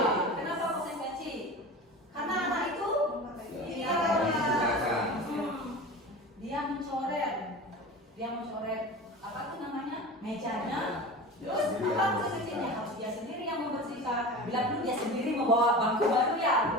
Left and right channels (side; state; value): both; normal; correlation 0.33